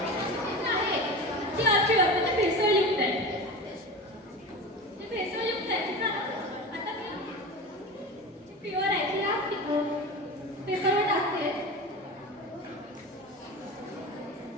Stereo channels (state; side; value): normal; both; correlation 0.29